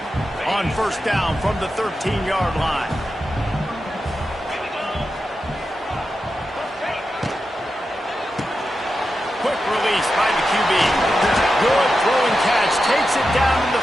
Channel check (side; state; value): both; normal; correlation 0.90